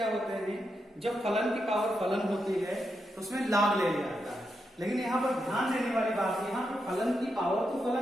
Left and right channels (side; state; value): both; normal; correlation 0.84